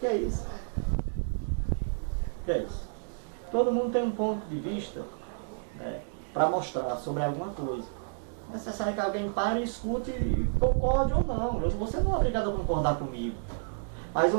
é isso? O que é isso? Todo mundo tem um ponto de vista, né, para mostrar sobre alguma coisa. É necessário que alguém pare e escute e concorde ou não. Você não é obrigado a concordar comigo. Mas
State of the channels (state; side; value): silent; left; digital silence